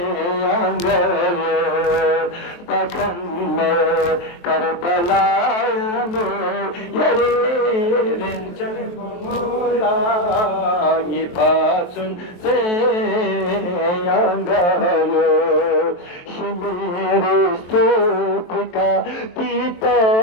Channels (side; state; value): right; late; 23 ms